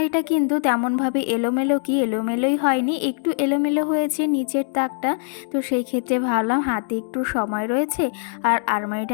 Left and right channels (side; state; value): right; silent; digital silence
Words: কিন্তু তেমনভাবে এলোমেলোই হয়নি, একটু এলোমেলো হয়েছে নিচের তাকটা। তো সেই ক্ষেত্রে ভাবলাম হাতে একটু সময় রয়েছে আর